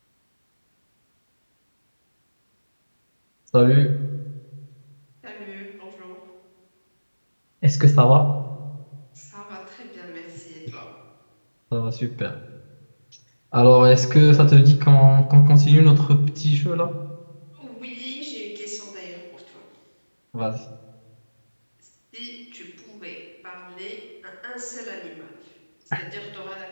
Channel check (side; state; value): both; inverted; correlation -1.00